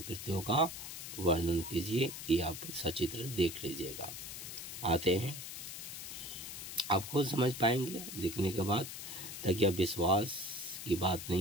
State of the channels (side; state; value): left; noise; hiss, 8 dB below the sound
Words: का वर्णन कीजिए। ये आप सचित्र देख लीजिएगा। आते हैं, आप खुद समझ पाएंगे देखने के बाद, ताकि आप विश्वास की बात